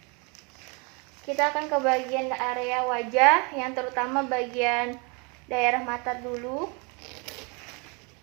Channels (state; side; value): quieter; left; 31.6 dB